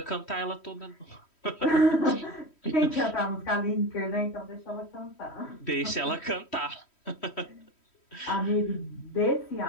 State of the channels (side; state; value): right; late; 3.1 ms